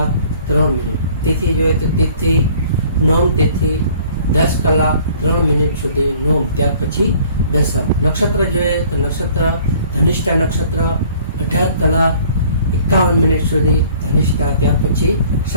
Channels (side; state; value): both; inverted; correlation -0.54